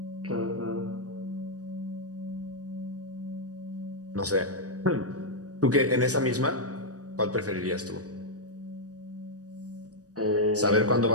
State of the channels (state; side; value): late; left; 0.67 ms